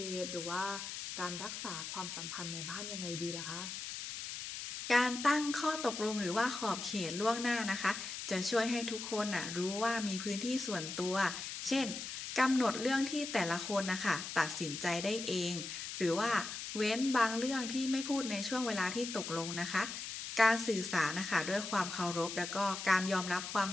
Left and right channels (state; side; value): noise; left; hiss, 7 dB below the sound